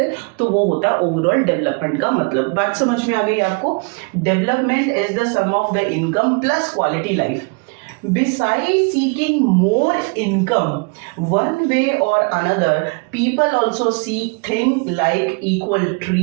तो वो होता है ओवरऑल डेवलपमेंट का मतलब। बात समझ में आ गई आपको। Development is the sum of the income plus quality life. Besides seeking more income, one way or another, people also seek things like equal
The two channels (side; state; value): left; quieter; 33.7 dB